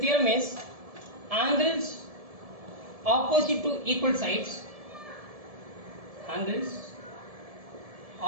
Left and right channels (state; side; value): late; left; 1.7 ms